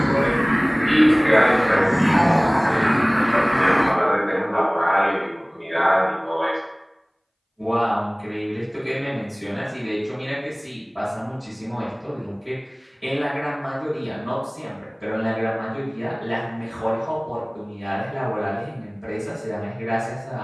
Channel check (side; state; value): both; identical; correlation 1.00